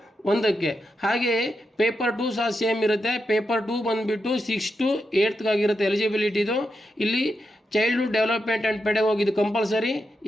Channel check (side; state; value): both; normal; correlation 0.86